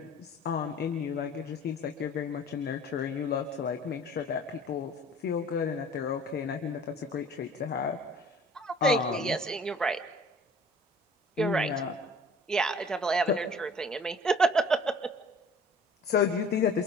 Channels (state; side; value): normal; both; correlation 0.49